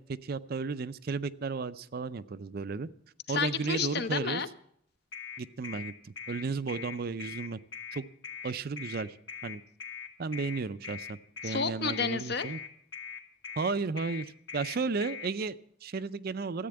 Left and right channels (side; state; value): both; normal; correlation 0.23